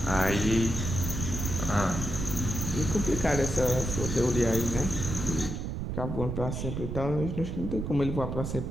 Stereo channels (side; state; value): right; noise; rumble, 4 dB below the sound